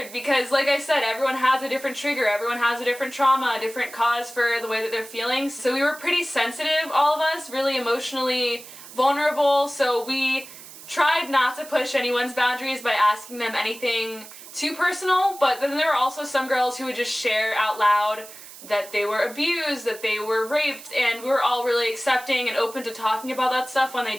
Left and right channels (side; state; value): right; noise; hiss, 16 dB below the sound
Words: because, like I said, everyone has a different trigger, everyone has a different trauma, a different cause for the way that they're feeling. So we were pretty sensitive, all of us, really emotionally vulnerable, so we tried not to push anyone's boundaries by asking them anything too personal, but then there were also some girls who would just share out loud that they were abused, that they were raped, and we were all really accepting and open to talking about that stuff when they